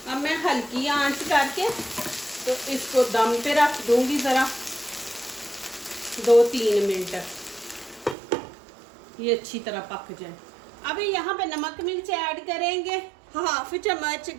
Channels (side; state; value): left; drops out; at 8.2 s